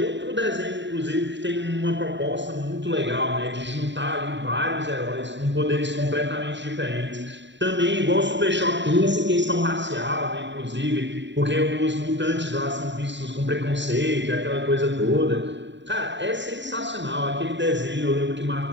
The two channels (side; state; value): left; late; 0.53 ms